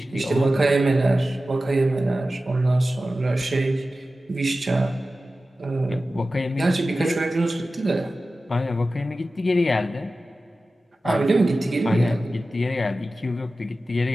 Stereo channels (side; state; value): both; normal; correlation 0.95